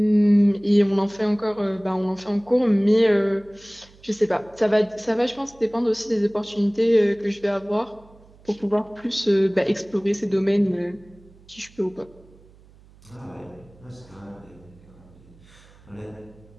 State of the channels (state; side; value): noise; right; hum, 26 dB below the sound